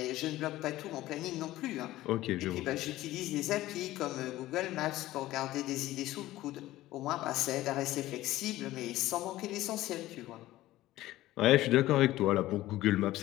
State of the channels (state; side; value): quieter; right; 16.0 dB